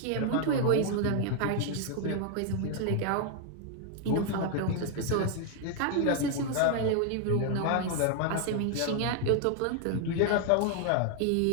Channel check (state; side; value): different; both; correlation 0.00